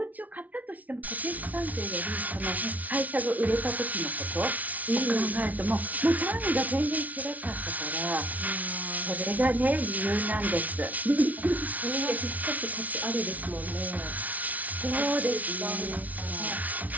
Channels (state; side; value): late; left; 0.073 ms